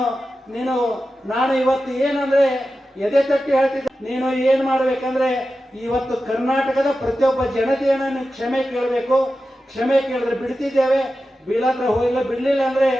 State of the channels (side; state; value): both; normal; correlation 0.92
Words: ಇವತ್ತು ಏನಂದ್ರೆ ಎದೆ ತಟ್ಟಿ ಹೇಳ್ತಿದ್ದೆ, ನೀನು ಏನ್ ಮಾಡ್ಬೇಕಂದ್ರೆ ಇವತ್ತು ಕರ್ನಾಟಕದ ಪ್ರತಿಯೊಬ್ಬ ಜನತೆಯನ್ನ ನೀವು ಕ್ಷಮೆ ಕೇಳಬೇಕು. ಕ್ಷಮೆ ಕೇಳಿದ್ರೆ ಬಿಡ್ತಿದ್ದೇವೆ, ಬೀಳಾದ್ರೆ ಹೋಗಿಲ್ಲ, ಬಿಡ್ಲಿಲ್ಲ ಅಂದ್ರೆ